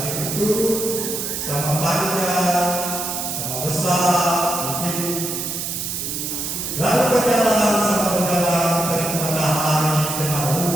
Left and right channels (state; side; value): noise; right; hiss, 4 dB below the sound